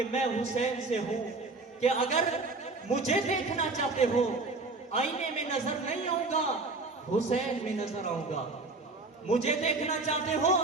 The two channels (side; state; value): left; quieter; 3.5 dB